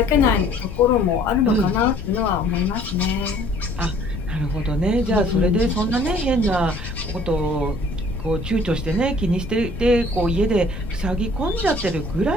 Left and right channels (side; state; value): left; noise; rumble, 10 dB below the sound